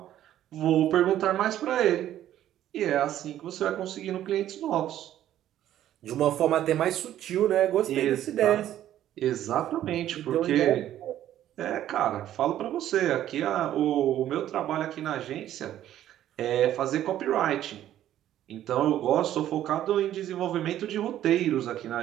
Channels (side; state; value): left; quieter; 12.1 dB